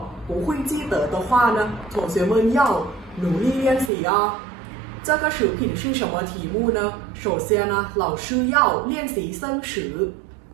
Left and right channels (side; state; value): left; drops out; at 3.9 s